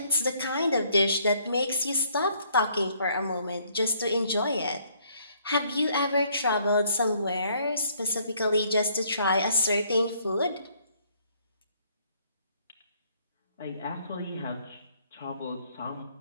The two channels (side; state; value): both; inverted; correlation -0.66